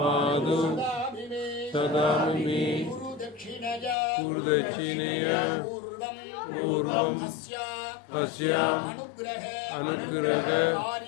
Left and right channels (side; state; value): right; drops out; at 4.0 s